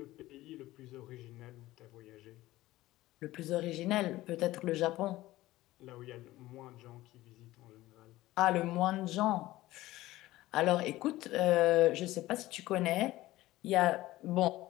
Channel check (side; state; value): right; quieter; 16.9 dB